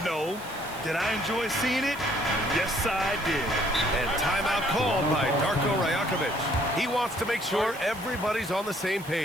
Did I enjoy seeing it? Yes, I did. And timeout called by Darko Rajakovic. He wants to make sure everybody's on the same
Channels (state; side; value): noise; right; hiss, 18 dB below the sound